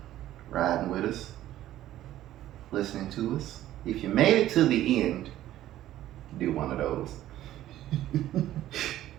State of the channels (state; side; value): quieter; left; 13.5 dB